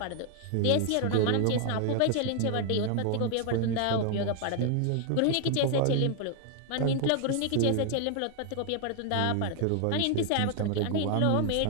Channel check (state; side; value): different; both; correlation 0.00